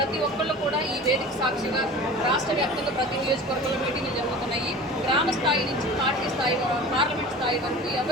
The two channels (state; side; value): normal; both; correlation 0.38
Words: ఒక్కళ్ళు కూడా ఈ వేదిక సాక్షిగా రాష్ట్ర వ్యాప్తంగా ప్రతి నియోజకవర్గంలో మీటింగ్లు జరుగుతున్నాయి. గ్రామ స్థాయి నుంచి పార్టీ స్థాయి పార్లమెంట్ స్థాయి వరకు